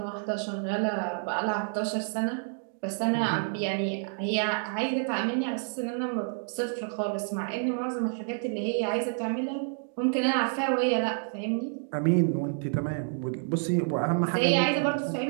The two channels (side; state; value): left; silent; 59 dB below the other